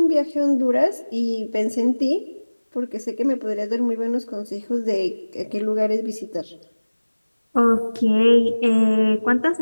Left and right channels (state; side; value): inverted; both; correlation -1.00